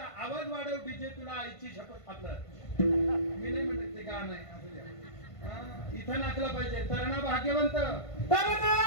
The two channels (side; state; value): right; late; 1.5 ms